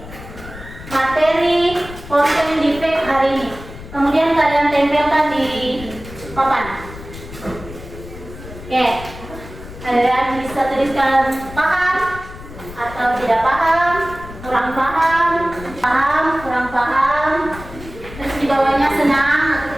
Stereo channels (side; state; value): left; noise; rumble, 14 dB below the sound